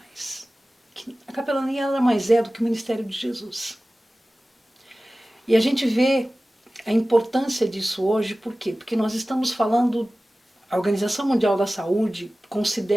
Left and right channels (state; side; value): normal; both; correlation 0.97